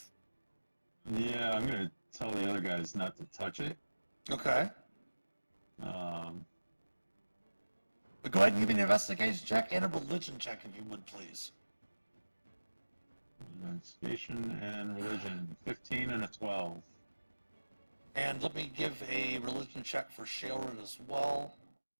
Yeah, I'm gonna tell the other guys not to touch it. Okay. Um, But go ahead and give me an investigation check and a religion check, if you would, please. investigation and religion, 15 and a 12. And let me give a religion check for Sharon as well.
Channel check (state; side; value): inverted; both; correlation -1.00